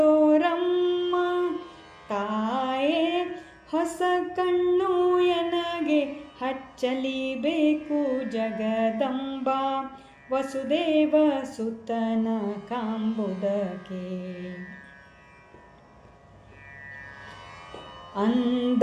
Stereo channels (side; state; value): both; identical; correlation 1.00